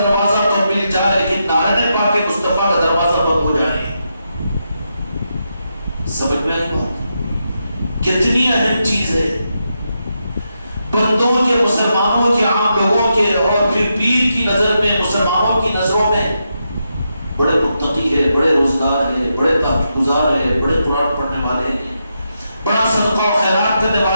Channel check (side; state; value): both; inverted; correlation -0.84